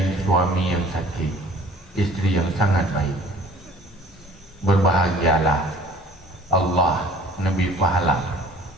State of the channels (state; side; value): normal; both; correlation 0.51